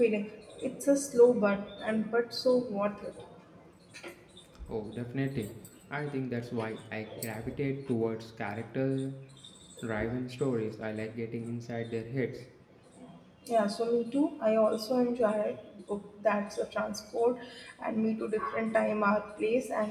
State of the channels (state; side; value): identical; both; correlation 1.00